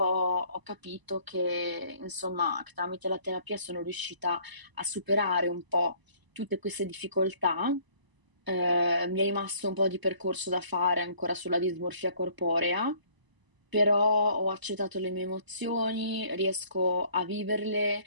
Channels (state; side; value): late; left; 1.0 ms